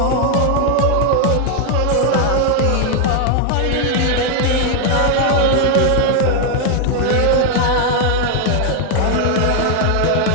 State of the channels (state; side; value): different; both; correlation 0.00